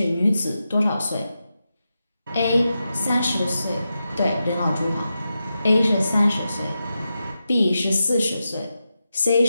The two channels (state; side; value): inverted; both; correlation -0.89